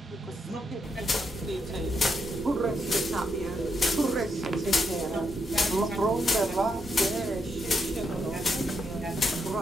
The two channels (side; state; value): both; normal; correlation 0.80